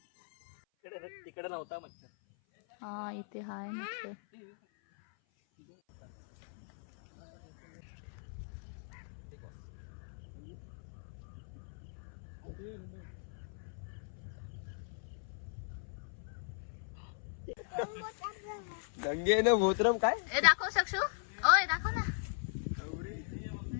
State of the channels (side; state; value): right; silent; 52 dB below the other